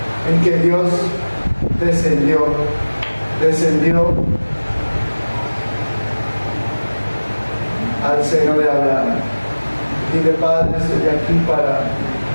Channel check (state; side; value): inverted; both; correlation -1.00